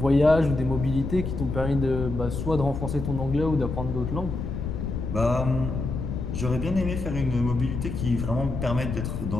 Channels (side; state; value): left; noise; rumble, 4 dB below the sound